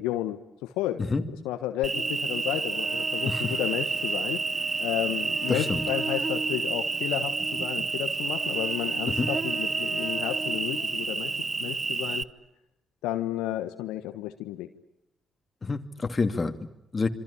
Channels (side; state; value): both; normal; correlation 0.71